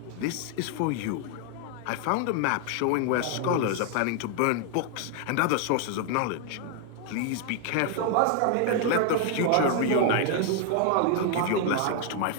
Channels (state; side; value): different; both; correlation 0.00